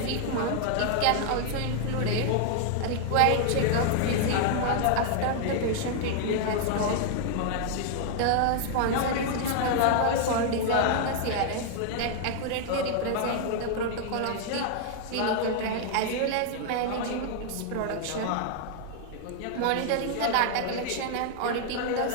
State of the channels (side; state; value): both; different; correlation 0.00